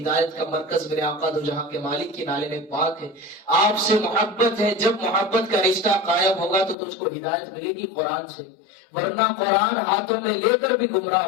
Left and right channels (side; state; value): right; drops out; at 6.8 s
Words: کا مرکز میرے آقا دو جہاں کے مالک کی نالے میں پاک ہے، آپ سے محبت ہے، جب محبت کا رشتہ قائم ہوگا تو تجھ کو ہدایت ملے گی قرآن سے، ورنہ قرآن ہاتھوں میں لے کر بھی گمراہ